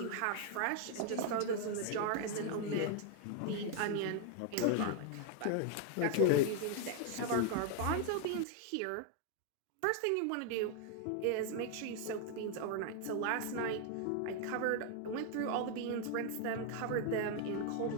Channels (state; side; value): different; both; correlation 0.00